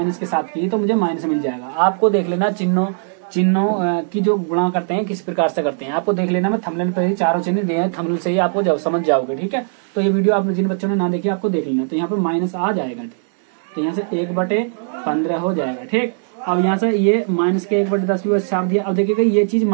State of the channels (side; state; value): left; silent; digital silence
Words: के साथ की तो मुझे माइनस मिल जाएगा। आपको देख लेना चिन्हों की जो गुणा करते हैं किस प्रकार से करते हैं, आपको देख लेना। मैं थंबनेल पर ही चारों चिन्ह दिए हैं, थंबनेल से ही आपको जब समझ जाओगे। ठीक है, तो ये वीडियो आप जिन बच्चों ने ना देखी आपको देख लेना। तो यहाँ पे माइनस आ जाएगा, तो यहाँ से 1/15 हो जाएगा। ठीक, अब यहाँ से ये माइनस के 1/10 भी छाप दिया। अब देखिएगा ये चीज